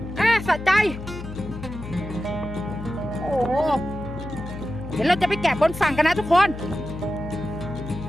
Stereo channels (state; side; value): noise; left; hum, 10 dB below the sound